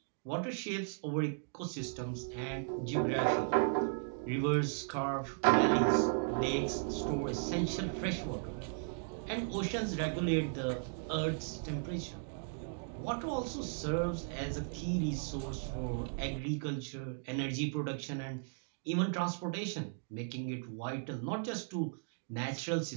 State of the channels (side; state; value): left; silent; digital silence